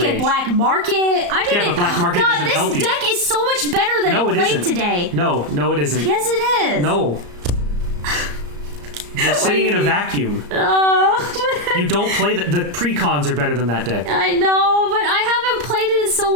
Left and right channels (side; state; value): left; late; 34 ms